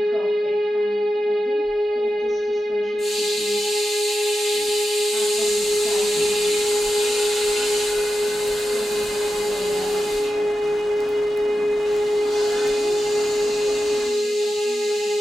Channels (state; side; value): normal; both; correlation 0.91